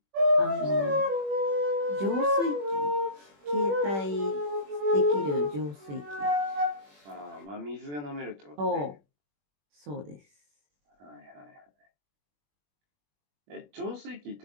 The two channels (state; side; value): late; left; 21 ms